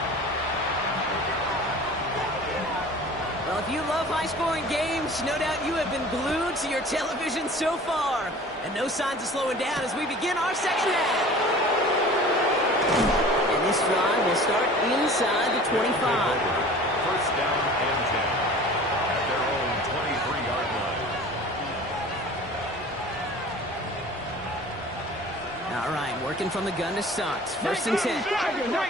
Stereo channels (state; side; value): normal; both; correlation 0.43